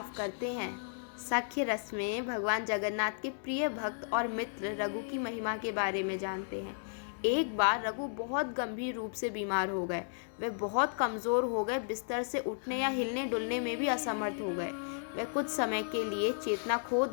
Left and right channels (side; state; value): right; silent; digital silence